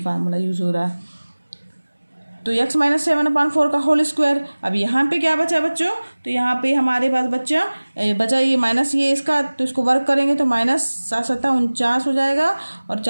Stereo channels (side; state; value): both; inverted; correlation -1.00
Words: यूज़ हो रहा है। तो x - 7/4 का होल स्क्वायर। अब यहाँ पे क्या बचा बच्चों, तो यहाँ पे हमारे पास बचा ये माइनस ये इसका, तो इसको वर्क करेंगे तो -7 × 7 = 49 हो जाएगा और